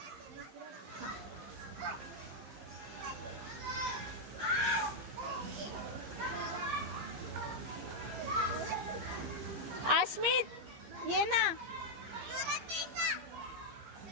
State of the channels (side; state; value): left; late; 15 ms